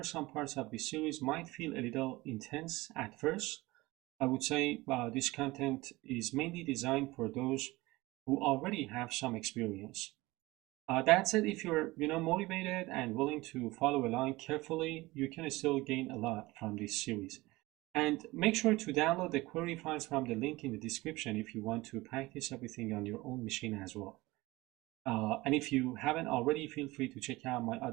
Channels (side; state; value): left; quieter; 20.6 dB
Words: some parts of this series might feel a little intense at first. I would say this content is mainly designed for those who already have some experience. That said, if you're motivated and willing to follow along carefully, you can still gain a lot from this series. And make sure to download the query files from the link in the description if you want to practice everything on your own machine as well. And if you haven't already, feel free to check out my